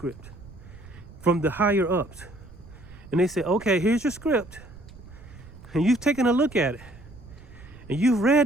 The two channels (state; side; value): noise; right; rumble, 19 dB below the sound